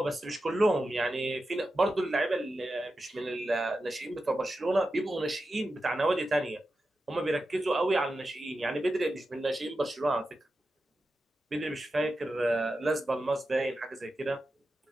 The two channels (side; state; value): both; normal; correlation 0.91